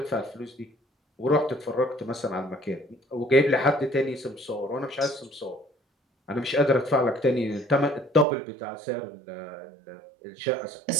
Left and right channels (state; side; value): drops out; left; at 8.2 s